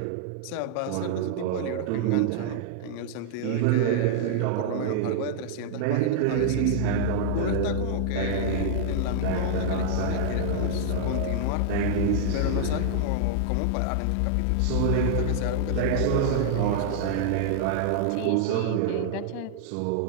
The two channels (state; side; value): different; both; correlation -0.01